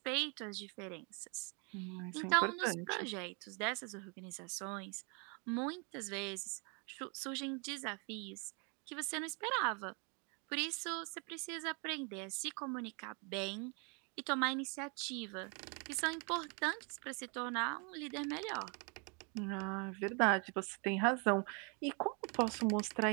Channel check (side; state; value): left; quieter; 35.1 dB